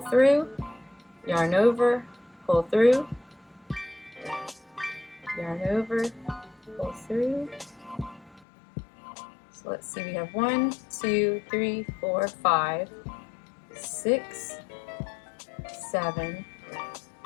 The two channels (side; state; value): right; drops out; at 8.5 s